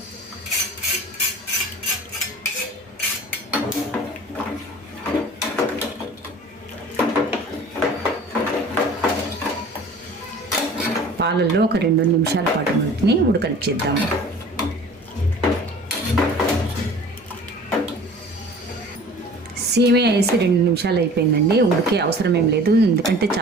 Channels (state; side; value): normal; both; correlation 0.44